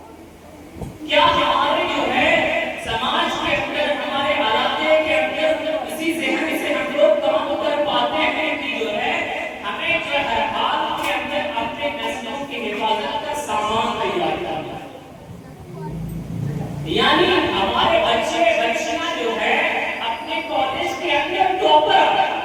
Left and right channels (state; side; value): identical; both; correlation 1.00